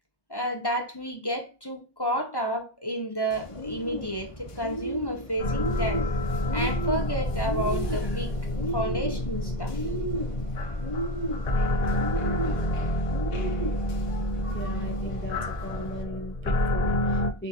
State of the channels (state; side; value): late; right; 1.1 ms